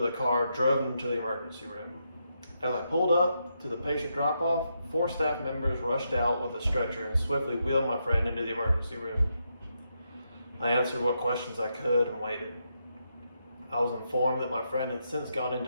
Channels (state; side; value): inverted; both; correlation -0.82